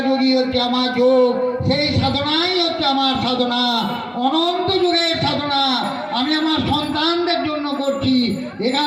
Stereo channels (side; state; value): both; identical; correlation 1.00